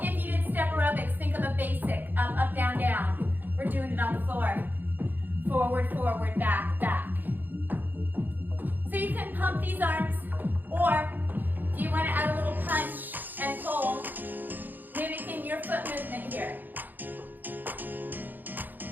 If you did step aerobics, think of a basic. Up, up, down, down. We're doing it on the floor. Forward, forward, back, back. So you can pump these arms, or if you want to add a little punch and pull, mimicking your foot movement here.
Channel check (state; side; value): late; left; 0.087 ms